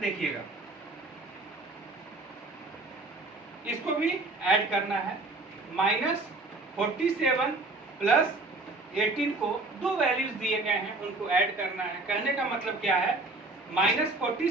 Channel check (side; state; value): left; quieter; 3.1 dB